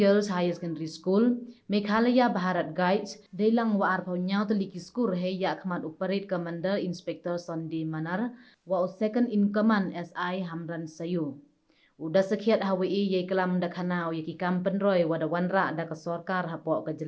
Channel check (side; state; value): both; identical; correlation 1.00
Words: Higher Secondary School, Meghalaya Bharat Guides, Dailang wa arpau nyau teliki skur he ya khmat operate commander Inspector Sunday Manar wa second in command SI Hamran Sayu. Udah sekiat hawi ye kelam da khanau ye ki kampen roy wada wanra da ka sarkar hapo ka